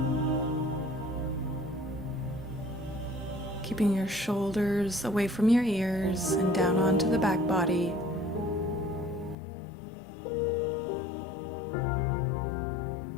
Keeping your shoulders away from your ears and down onto the back body.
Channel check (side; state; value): right; drops out; at 9.3 s